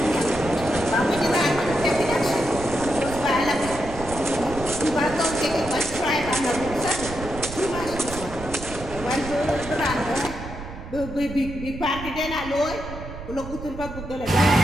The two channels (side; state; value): right; noise; rumble, 11 dB below the sound